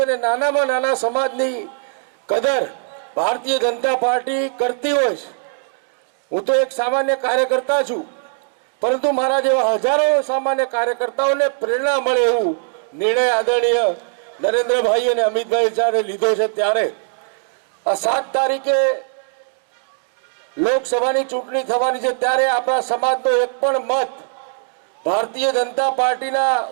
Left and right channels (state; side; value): silent; left; digital silence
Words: અને નાનામાં નાના સમાજની કદર ભારતીય જનતા પાર્ટી કરતી હોય છે. હું તો એક સામાન્ય કાર્યકર્તા છું, પરંતુ મારા જેવા હજારો સામાન્ય કાર્યકર્તાઓને પ્રેરણા મળે એવું નિર્ણય આદરણીય નરેન્દ્રભાઈ અને અમિતભાઈ જ્યારે લીધો છે ત્યારે આ 7 તારીખે લોકસભાની ચૂંટણી થવાની છે ત્યારે આપણા સમાજનો એક પણ મત ભારતીય જનતા પાર્ટીના